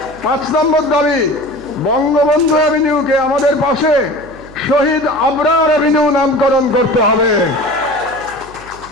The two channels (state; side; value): noise; right; hum, 21 dB below the sound